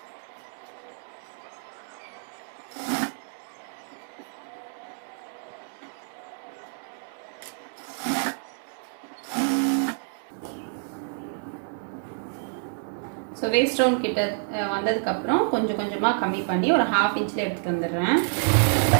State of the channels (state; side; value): silent; left; digital silence